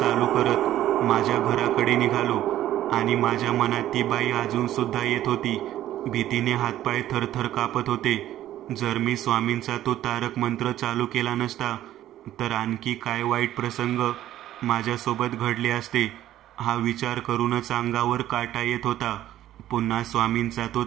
करत माझ्या घराकडे निघालो आणि माझ्या मनात ती बाई अजून सुद्धा येत होती. भीतीने हातपाय थरथर कापत होते. जर मी स्वामींचा तो तारक मंत्र चालू केला नसता तर आणखी काय वाईट प्रसंग माझ्यासोबत घडले असते, हा विचार करूनच अंगावर काटा येत होता. पुन्हा स्वामींचा तो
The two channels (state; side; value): quieter; left; 13.0 dB